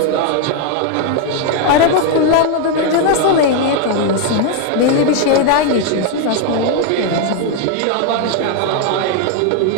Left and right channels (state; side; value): different; both; correlation 0.00